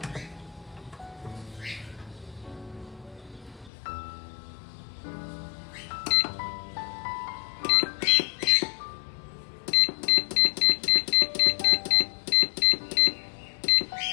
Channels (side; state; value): right; drops out; at 3.7 s